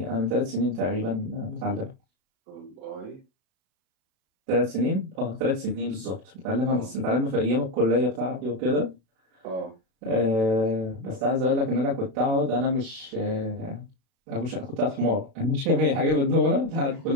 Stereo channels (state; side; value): late; left; 36 ms